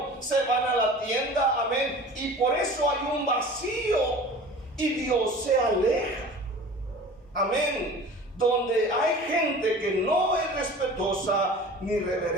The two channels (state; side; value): normal; both; correlation 0.41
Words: se van a la tienda, amén, y por eso hay un vacío y Dios se aleja, amén. Donde hay gente que no es respetuosa ni